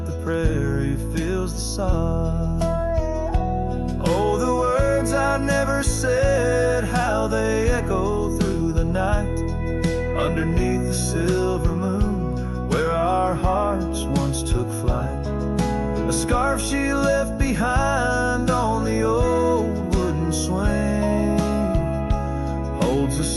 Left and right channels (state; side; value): identical; both; correlation 1.00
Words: the prairie fills the sod. Oh, the words I never said, how they echo through the night, underneath the silver moon, where our hearts once took flight. A scarf she left behind on the old wooden swing holds the